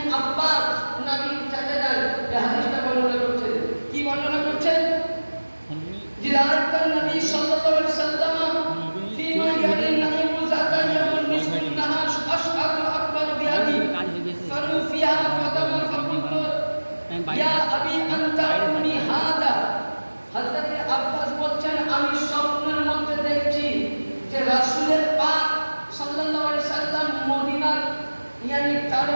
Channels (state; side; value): inverted; both; correlation -1.00